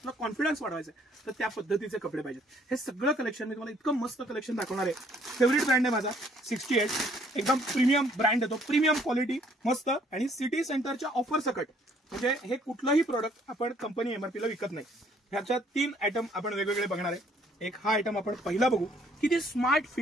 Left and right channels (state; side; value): normal; both; correlation 0.63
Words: कॉन्फिडन्स वाढवायचा आहे, तर त्या पद्धतीचे कपडे पाहिजेत. हे सगळं कलेक्शन मी तुम्हाला इतकं मस्त कलेक्शन दाखवणार आहे. फेवरेट ब्रँड आहे माझा 68. एकदम प्रीमियम ब्रँड येतो, प्रीमियम क्वालिटी मस्त. आणि सिटी सेंटरच्या ऑफर सकट, म्हणजे हे कुठलंही प्रोडक्ट आपण कंपनी एमआरपीला विकत नाही. ह्याच्या 3 आयटम आपण वेगवेगळे बघणार आहे. एक हा आयटम आपण पहिला बघू, किती स्मार्ट